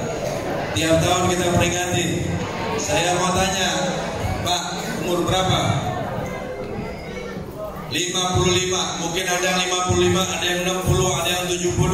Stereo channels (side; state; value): both; identical; correlation 1.00